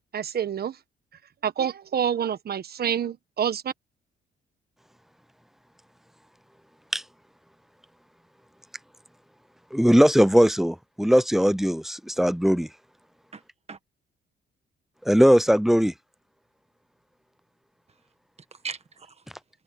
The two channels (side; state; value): both; normal; correlation 0.90